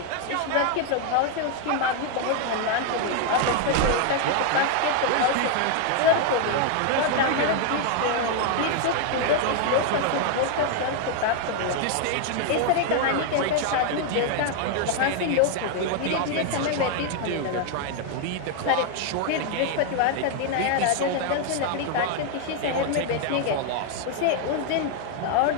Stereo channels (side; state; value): both; different; correlation 0.00